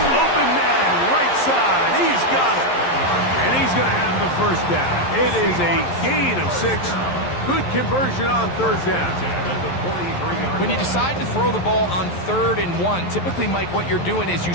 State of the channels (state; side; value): late; right; 11 ms